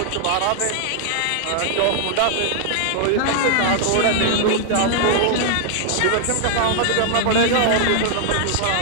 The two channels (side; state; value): both; different; correlation 0.00